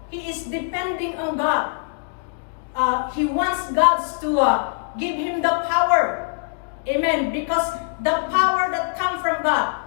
he is depending on God. He wants God to give him the power. Amen. Because the power that comes from God,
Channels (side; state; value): right; silent; digital silence